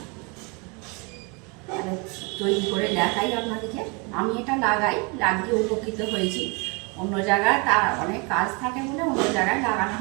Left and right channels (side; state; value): left; quieter; 30.9 dB